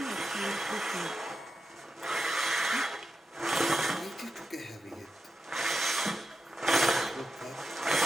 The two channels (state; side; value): normal; both; correlation 0.88